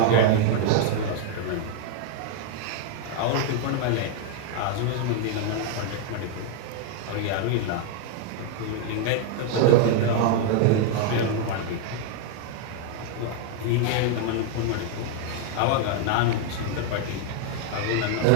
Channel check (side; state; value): both; different; correlation 0.00